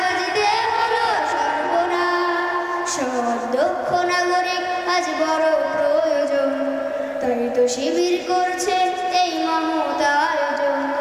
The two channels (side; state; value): both; identical; correlation 1.00